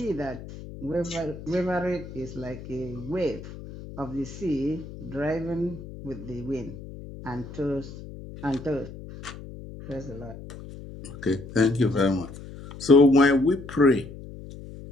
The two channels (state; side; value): noise; left; hum, 13 dB below the sound